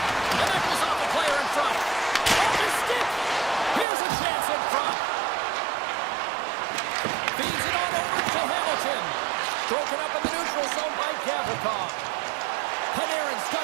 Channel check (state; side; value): drops out; left; at 3.9 s